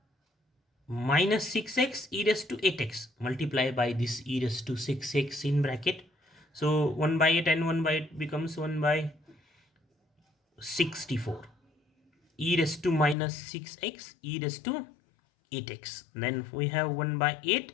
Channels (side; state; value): right; drops out; at 13.2 s